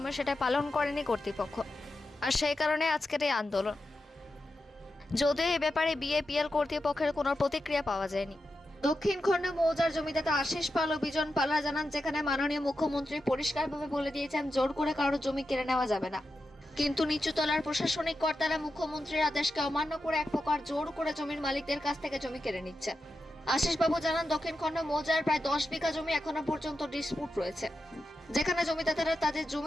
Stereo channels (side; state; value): both; normal; correlation 0.89